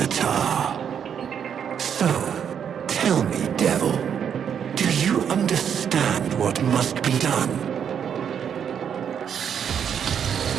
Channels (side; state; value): left; quieter; 8.1 dB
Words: So, tell me, devil, do you understand what must be done?